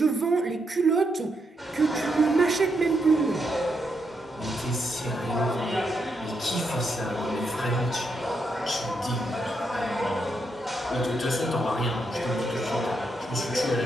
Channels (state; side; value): normal; both; correlation 0.80